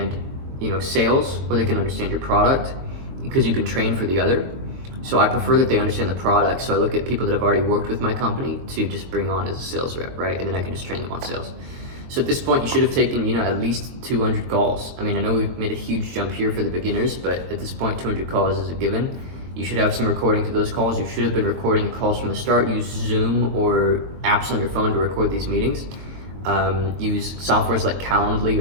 sales, or they can understand your product, because you can train for the other. So I prefer that they understand the product. So I look at people that have already worked with my company to just bring on as a sales rep, right? And then I can just train them on sales. So at this point, you should have taken, at least 200 calls. I mean, I know we've made a huge jump here for the beginners, but at this point, 200 calls is a given. You should have some recordings of those calls. You should have been recording the calls from the start. Use Zoom or apps on your phone to record these meetings. Use softwares like Calendly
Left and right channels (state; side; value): late; left; 22 ms